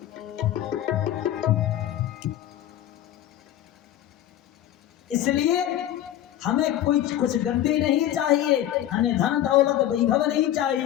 इसलिए हमें कुछ गद्दी नहीं चाहिए, हमें धन दौलत वैभव नहीं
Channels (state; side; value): quieter; right; 12.2 dB